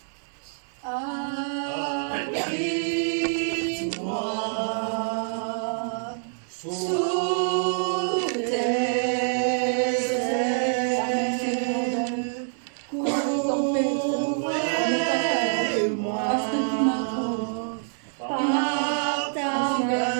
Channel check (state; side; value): silent; left; digital silence